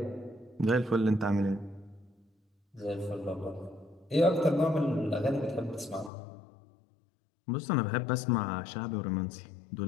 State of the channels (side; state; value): right; drops out; at 6.1 s